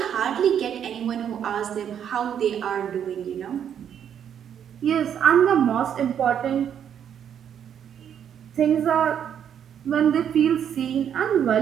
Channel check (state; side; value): quieter; left; 8.9 dB